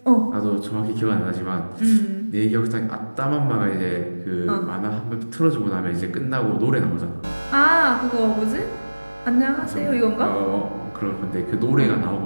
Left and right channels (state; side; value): inverted; both; correlation -1.00